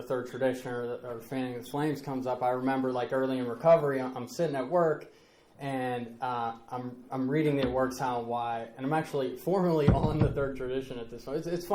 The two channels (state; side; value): identical; both; correlation 1.00